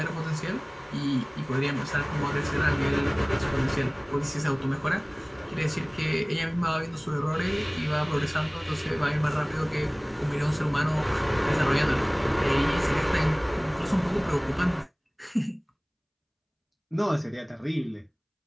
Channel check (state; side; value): identical; both; correlation 1.00